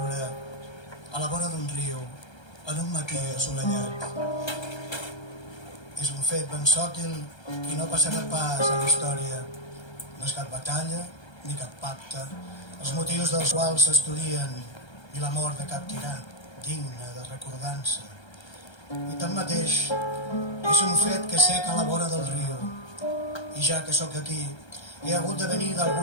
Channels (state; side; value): late; right; 1.3 ms